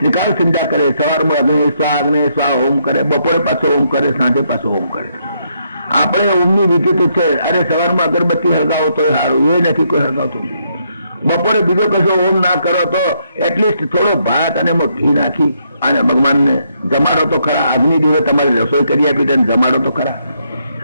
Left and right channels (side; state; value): both; inverted; correlation -0.75